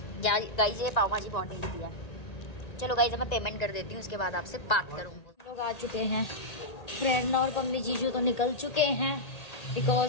गाइस ये पाव भाजी बहुत टेस्टी है। चलो गाइस मैं पेमेंट कर देती हूँ, उसके बाद आपसे बात करूँगी। लोग आ चुके हैं, प्रेरणा और पम्मी जीजू तो निकल चुके हैं,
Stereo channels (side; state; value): right; late; 1.8 ms